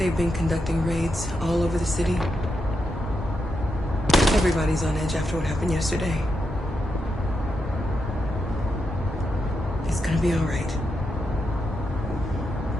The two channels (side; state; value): both; normal; correlation 0.85